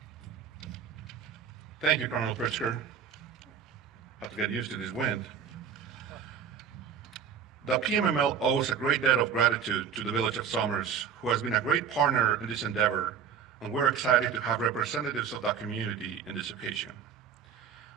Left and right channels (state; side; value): quieter; left; 7.5 dB